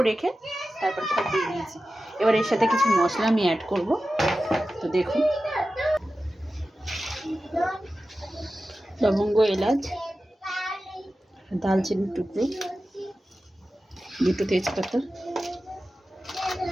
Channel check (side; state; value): both; normal; correlation 0.94